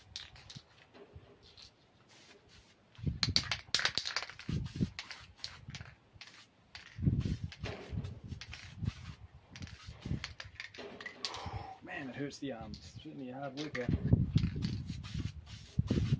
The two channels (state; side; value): identical; both; correlation 1.00